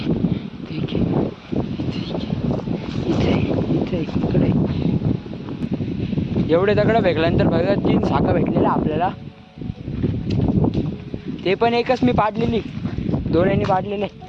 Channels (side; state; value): both; identical; correlation 1.00